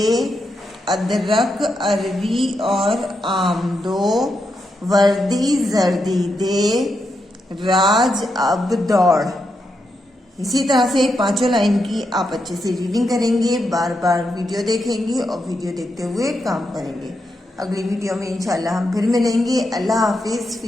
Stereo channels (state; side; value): normal; both; correlation 0.84